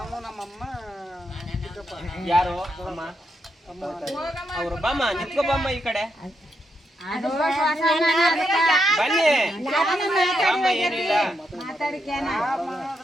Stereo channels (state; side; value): normal; both; correlation 0.81